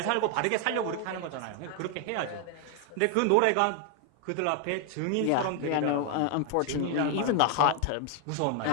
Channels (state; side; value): different; both; correlation 0.00